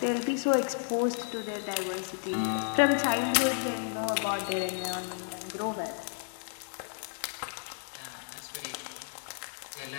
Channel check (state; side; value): silent; right; digital silence